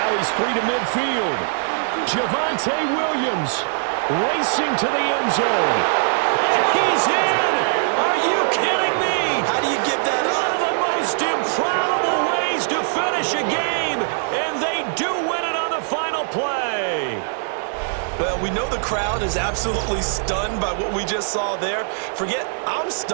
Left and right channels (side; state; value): left; silent; 64 dB below the other